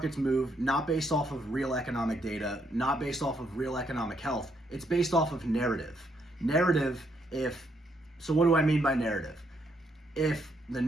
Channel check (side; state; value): both; normal; correlation 0.74